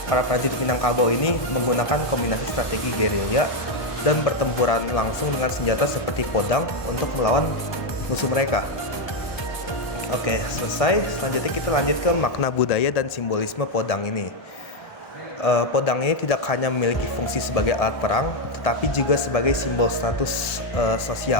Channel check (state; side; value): late; right; 1.2 ms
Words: Minangkabau ini menggunakan kombinasi strategi gerilya dan bertempuran langsung dengan senjata seperti podang untuk melawan musuh mereka. Oke, selesai. Selanjutnya kita lanjut ke makna budaya dan simbolisme podang ini. Podang ini tidak hanya memiliki fungsi sebagai alat perang, tetapi juga sebagai simbol status